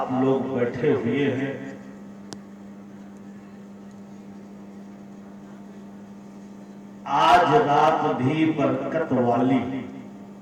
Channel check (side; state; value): both; identical; correlation 1.00